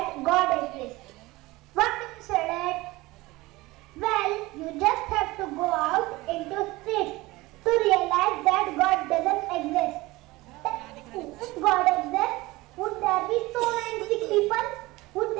God exists. What do you say that? Well, you just have to go out into streets to realize that God doesn't exist. If God exists, would there be so many sick people? Would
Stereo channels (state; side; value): quieter; left; 20.5 dB